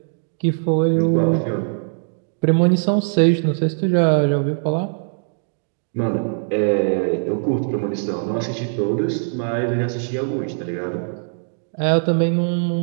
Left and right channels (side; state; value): left; silent; digital silence